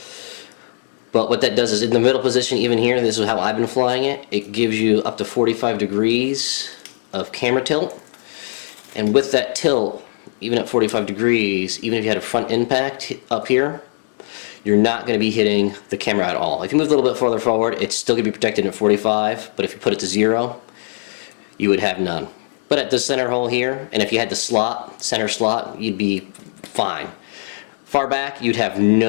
But what that does is, in the middle position, even here, this is how I've been flying it, it gives you up to 45 degrees of camera tilt. And with that tilt, even at 45 degrees, even if you had a front impact up here, you're not going to be hitting the camera at all. If you move a little bit farther forward, it's still going to be protected at 45, but if you put it to 0, you would have none. But at the center hole here, and if you had the center slot, you'd be fine. Far back, you'd have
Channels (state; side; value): silent; right; digital silence